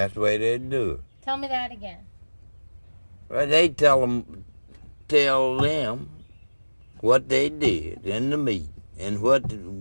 the way they'd do it. Tell me that again. Well, they tell them what they did in the meeting and what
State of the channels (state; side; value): inverted; both; correlation -1.00